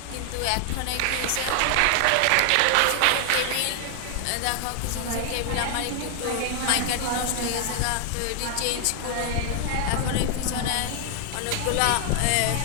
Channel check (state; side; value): different; both; correlation 0.00